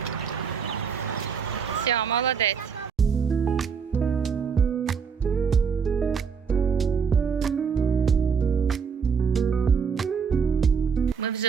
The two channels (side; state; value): left; quieter; 6.2 dB